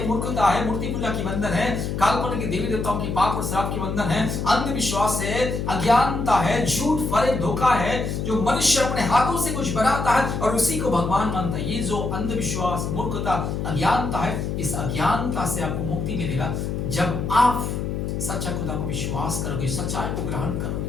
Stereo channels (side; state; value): left; noise; hum, 2 dB below the sound